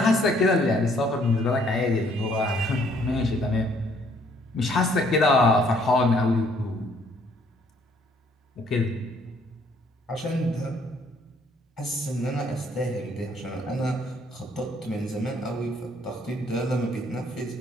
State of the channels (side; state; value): both; normal; correlation 0.64